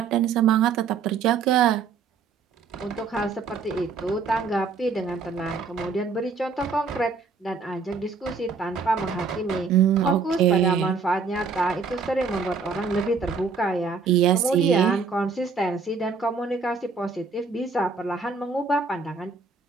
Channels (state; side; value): quieter; left; 4.9 dB